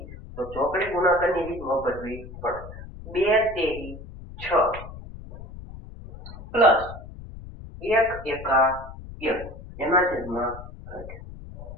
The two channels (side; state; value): left; noise; rumble, 14 dB below the sound